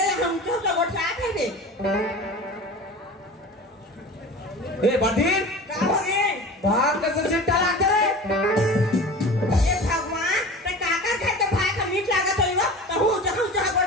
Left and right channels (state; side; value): normal; both; correlation 0.36